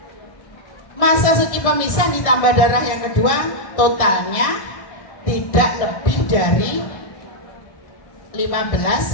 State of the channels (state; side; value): late; right; 1.6 ms